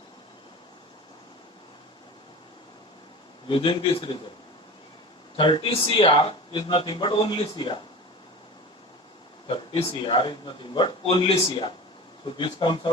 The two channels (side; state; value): both; normal; correlation 0.34